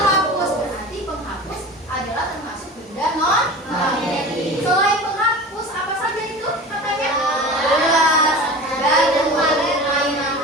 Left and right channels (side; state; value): both; normal; correlation 0.35